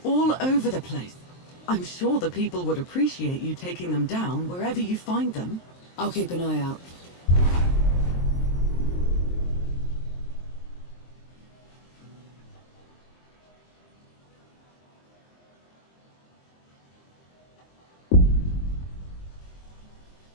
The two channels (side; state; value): right; late; 23 ms